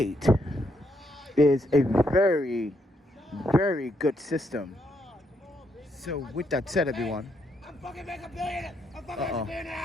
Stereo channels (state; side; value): normal; both; correlation 0.76